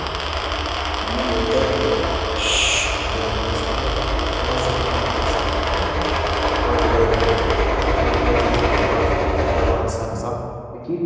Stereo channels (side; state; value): both; identical; correlation 1.00